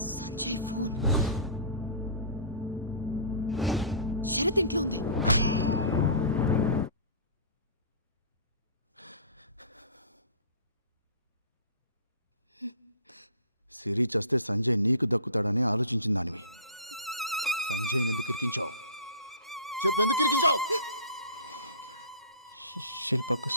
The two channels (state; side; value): inverted; both; correlation -0.39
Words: సంజయ్ ఫోన్ శరత్ ఇంట్లో ఉంది. సిరి చస్తే సంజయ్ నీకు దక్కుతాడని ఆలోచించిన దానివి. సంజయ్ ఎందుకు ఇరికించావు? చెప్పు, ఎందుకు ఇరికించావు? శిల్పకు